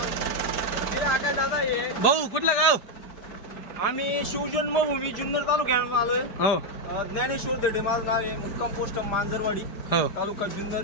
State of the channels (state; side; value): late; right; 4.9 ms